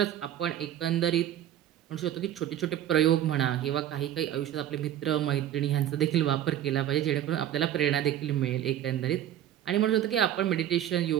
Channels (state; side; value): quieter; left; 11.3 dB